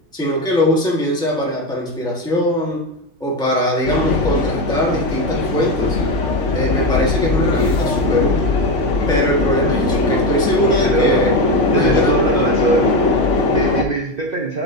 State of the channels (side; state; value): both; normal; correlation 0.14